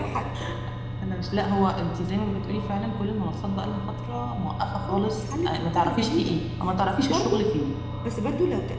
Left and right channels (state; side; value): identical; both; correlation 1.00